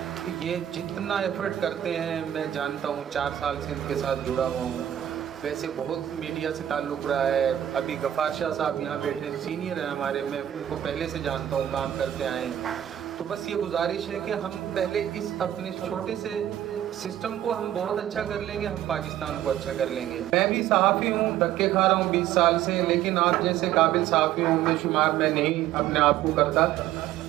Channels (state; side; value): quieter; left; 11.6 dB